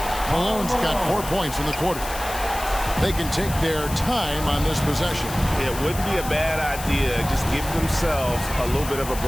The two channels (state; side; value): noise; left; hiss, 11 dB below the sound